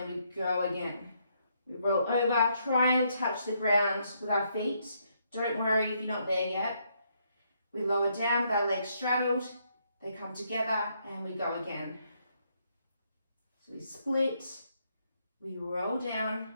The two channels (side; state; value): both; inverted; correlation -0.74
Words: we go again. We roll over, try and touch the ground with our feet. Don't worry if you're not there yet. We lower down with our legs straddled, they come together, and we go again. So we split, we roll down,